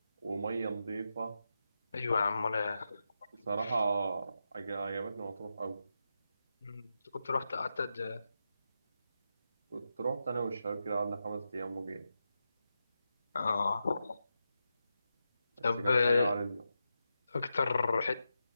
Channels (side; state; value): both; inverted; correlation -0.88